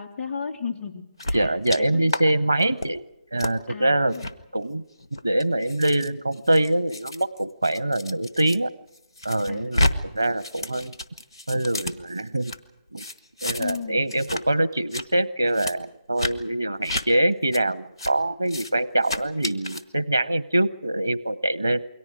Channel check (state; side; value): inverted; both; correlation -0.90